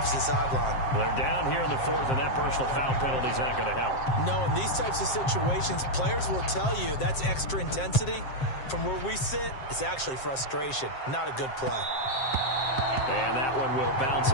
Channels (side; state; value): right; late; 7.6 ms